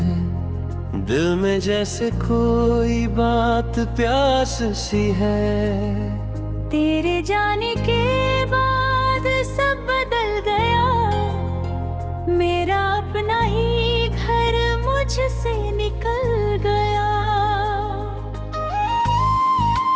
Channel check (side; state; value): both; identical; correlation 1.00